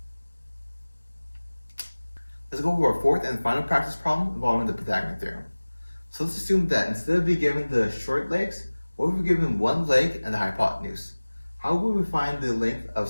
Let's go over our fourth and final practice problem involving the Pythagorean theorem. So let's assume that instead of being given the short legs, what if we're given one leg and the hypotenuse? How would we find the length of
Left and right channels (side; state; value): both; inverted; correlation -1.00